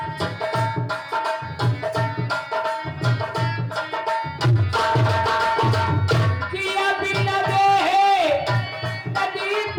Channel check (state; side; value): identical; both; correlation 1.00